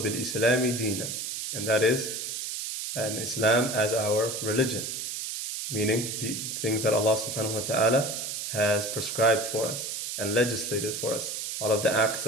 دِينًا, and that is an Islam as our religion, meaning the things that Allah subhanahu wa ta'ala has prescribed for us and legislated for us. All of the acts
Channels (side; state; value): right; noise; hiss, 4 dB below the sound